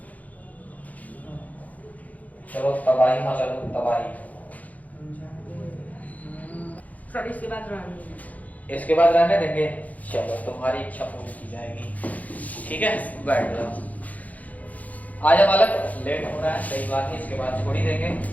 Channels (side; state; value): right; late; 0.075 ms